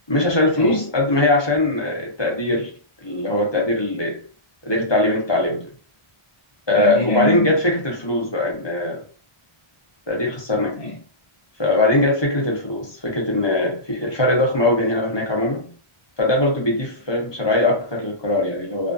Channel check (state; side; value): late; right; 1.2 ms